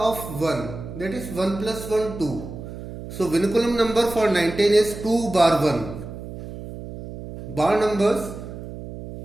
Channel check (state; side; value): noise; right; hum, 11 dB below the sound